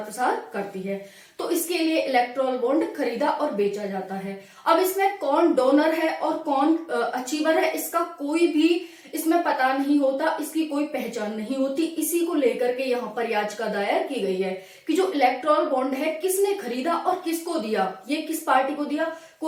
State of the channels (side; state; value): both; identical; correlation 1.00